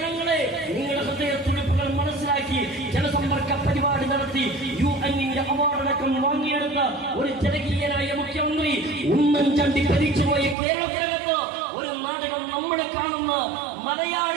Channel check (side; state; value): left; drops out; at 10.6 s